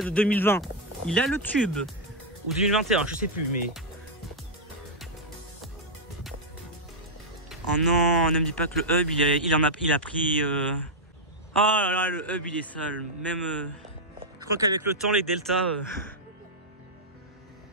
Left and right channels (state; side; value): normal; both; correlation -0.04